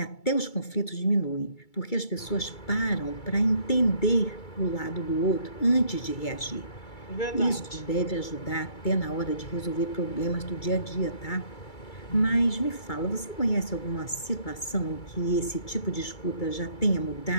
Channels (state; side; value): late; right; 2.3 ms